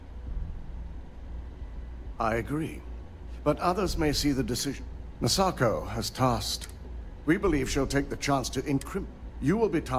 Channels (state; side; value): identical; both; correlation 1.00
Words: I agree. But others may see the decision. Masako has tasked. We believe she'll take the chance to incriminate. You will be